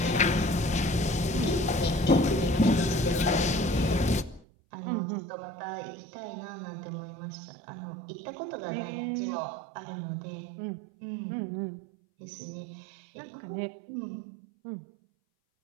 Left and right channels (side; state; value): left; drops out; at 4.5 s